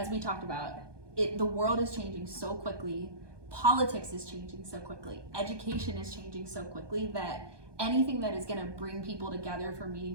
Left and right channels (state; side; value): late; left; 1.2 ms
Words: we talked about, the world is changing so quickly, politics is changing so quickly, education is changing so quickly, that anything that is going to bring people together for